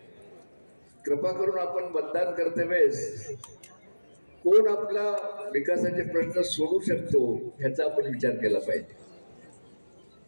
कृपा करून आपण मतदान करते वेळेस कोण आपला विकासाचे प्रश्न सोडवू शकतो ह्याचा आपण विचार केला पाहिजे.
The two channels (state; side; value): inverted; both; correlation -1.00